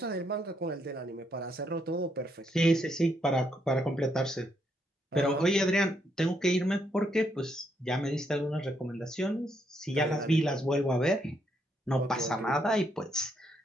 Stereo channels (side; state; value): both; normal; correlation 0.75